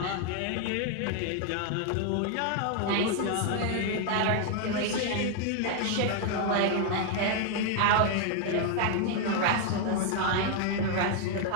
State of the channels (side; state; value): both; different; correlation 0.00